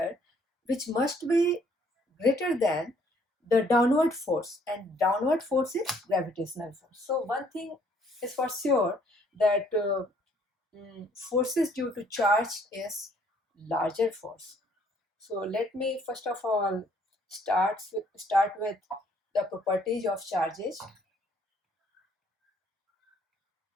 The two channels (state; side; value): normal; both; correlation 0.63